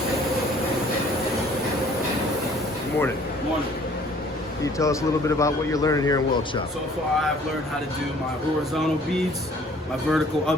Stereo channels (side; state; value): both; normal; correlation 0.55